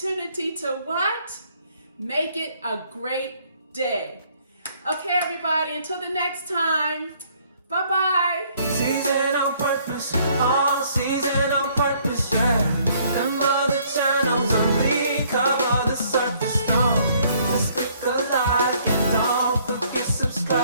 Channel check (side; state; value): both; inverted; correlation -0.64